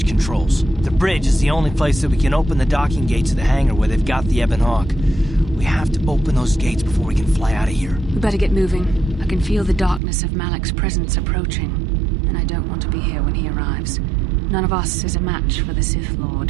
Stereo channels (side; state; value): left; drops out; at 10.0 s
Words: controls. The bridge is the only place that we can open the docking gates of the hangar where they've got the Ebon Hawk. We have to open those gates before we can fly out of here. We better get moving. I can feel the darkness of Malik's presence approaching, and I don't want to be here when he arrives. None of us is a match for the Sith